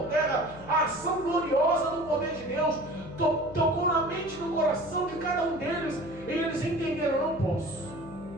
terra. A ação gloriosa do poder de Deus tocou na mente e no coração de cada um deles, e eles entenderam: não posso,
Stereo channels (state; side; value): noise; left; hum, 18 dB below the sound